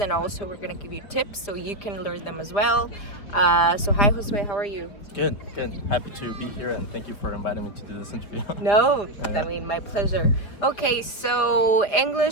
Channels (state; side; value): late; right; 4.9 ms